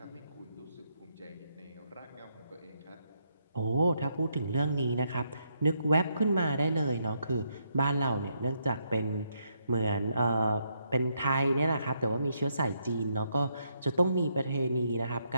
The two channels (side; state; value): both; inverted; correlation -0.77